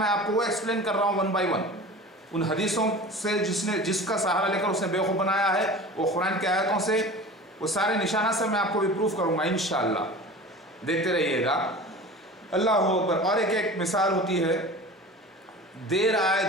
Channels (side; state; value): both; normal; correlation 0.37